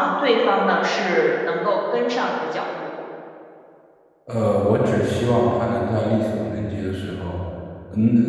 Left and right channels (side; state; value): both; identical; correlation 1.00